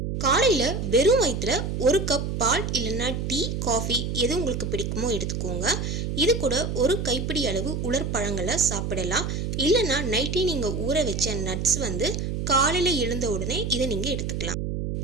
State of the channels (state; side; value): noise; right; hum, 3 dB below the sound